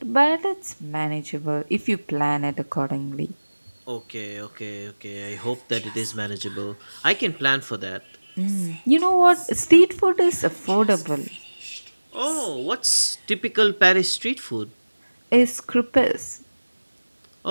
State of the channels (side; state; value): both; inverted; correlation -1.00